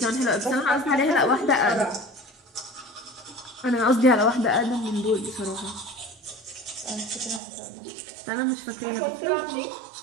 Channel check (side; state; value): left; drops out; at 7.4 s